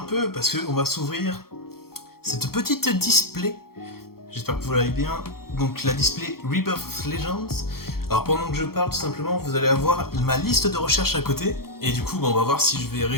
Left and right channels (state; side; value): late; right; 0.94 ms